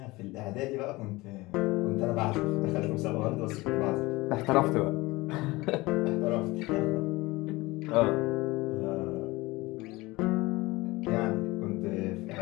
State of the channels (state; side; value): quieter; right; 21.3 dB